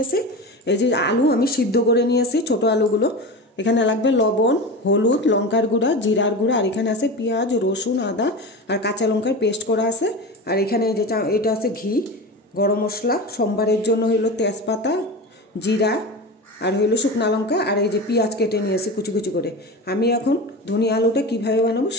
এই যে আলু আমি সিদ্ধ করে নিয়েছি, ছোট আলুগুলো। এখানে লাগবে লবণ, হলুদ, লঙ্কার গুঁড়া, জিরার গুঁড়া, আর এখানে আছে পেঁয়াজ, রসুন, আদা আর কাঁচা লঙ্কার পেস্ট করা আছে। আর এখানে এই যে এটা আছে ঘি, গরম মশলা, সোমবারের জন্য হইলো তেজপাতা, জিরা আর হইলো শুকনা লঙ্কা, আর এই যে পেঁয়াজ কেটে নিয়েছি কুচি কুচি করে। আমি এখন ধনিয়া আলুটা কীভাবে বানাবো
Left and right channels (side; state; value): both; normal; correlation 0.27